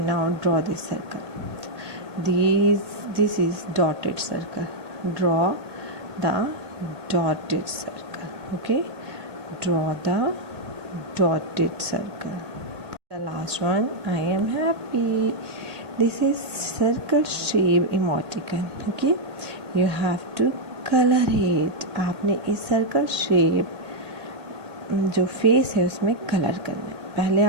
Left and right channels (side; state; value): left; late; 2.0 ms